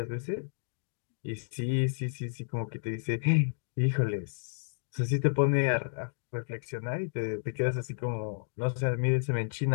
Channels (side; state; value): right; silent; digital silence